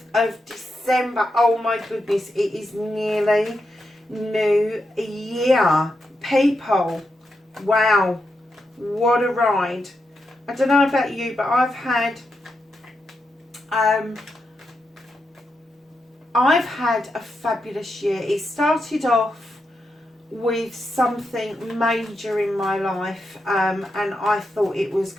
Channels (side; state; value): both; normal; correlation 0.85